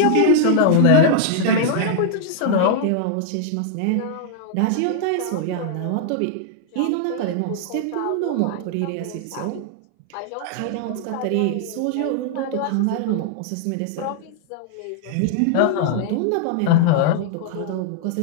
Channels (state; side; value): different; both; correlation -0.01